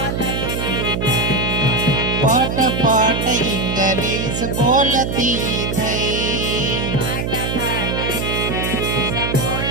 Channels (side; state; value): right; noise; hum, 1 dB below the sound